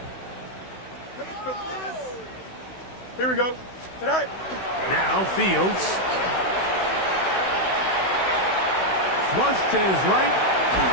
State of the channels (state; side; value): late; right; 16 ms